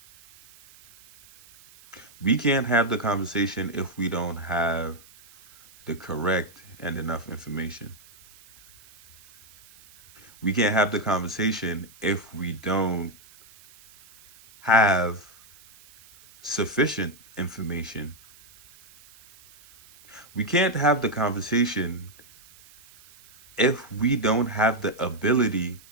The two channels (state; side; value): noise; right; hiss, 25 dB below the sound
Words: We can't have the conversation if we don't have the correct and enough information. We can't have the conversation if we don't have sufficient information. We can't have the conversation if we don't have the ability